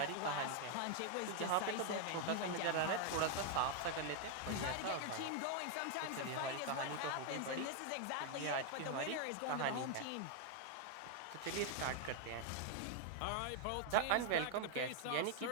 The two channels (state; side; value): different; both; correlation 0.00